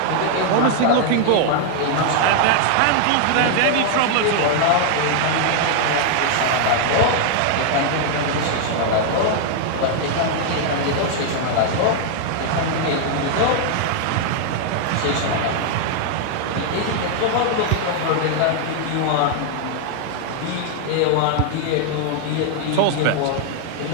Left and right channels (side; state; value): both; different; correlation 0.00